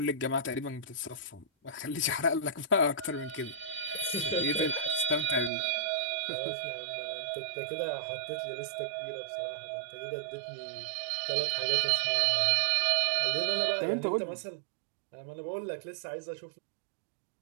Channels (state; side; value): drops out; left; at 5.5 s